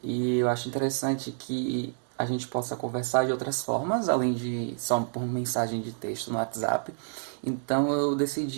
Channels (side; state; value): left; silent; digital silence